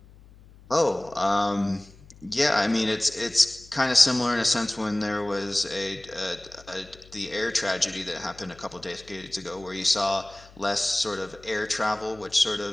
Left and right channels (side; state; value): left; noise; hum, 23 dB below the sound